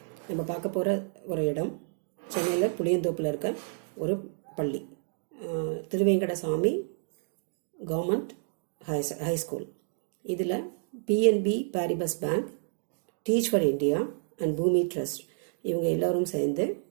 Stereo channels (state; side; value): silent; left; digital silence